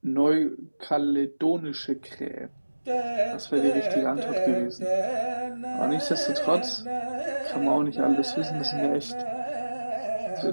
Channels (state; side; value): inverted; both; correlation -1.00